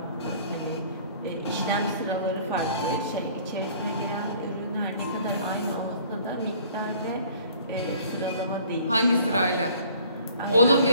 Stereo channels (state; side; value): inverted; both; correlation -0.54